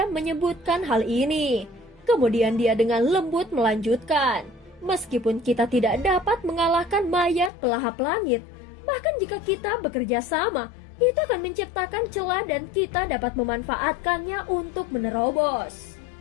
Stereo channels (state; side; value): drops out; right; at 7.5 s